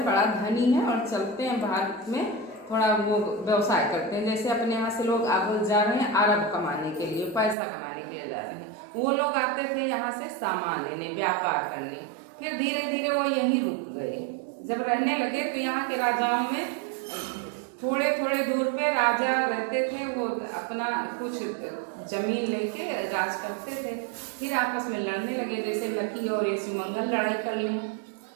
बड़ा धनी है, और चलते हैं भारत में थोड़ा वो व्यवसाय करते हैं। जैसे अपने यहाँ से लोग अब जा रहे हैं अरब कमाने के लिए, पैसा कमाने के लिए जा रहे हैं, वो लोग आते थे यहाँ से सामान लेने, व्यापार करने। फिर धीरे धीरे वो यहीं रुक गए। जब रहने लगे तो यहाँ के राजाओं में थोड़े थोड़े दूर पे राजा रहते थे, वो अपना कुछ जमीन लेके राज करते थे। फिर आपस में लड़ने लगे, जैसे लकी और ये शिवमंगल लड़ाई कर लिए।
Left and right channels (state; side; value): drops out; left; at 7.6 s